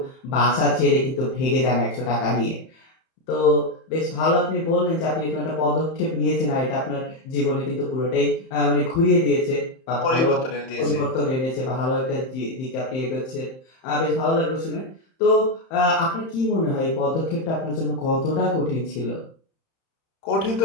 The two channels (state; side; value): late; right; 31 ms